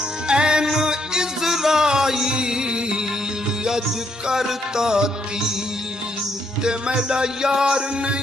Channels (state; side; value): normal; both; correlation 0.74